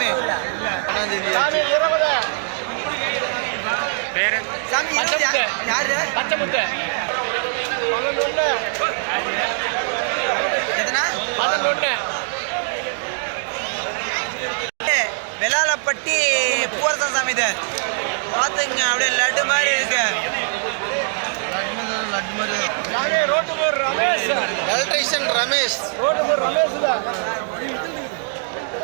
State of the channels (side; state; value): left; silent; digital silence